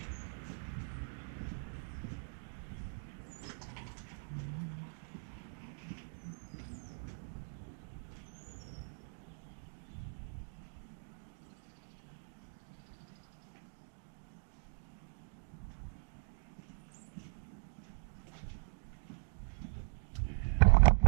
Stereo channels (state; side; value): silent; left; digital silence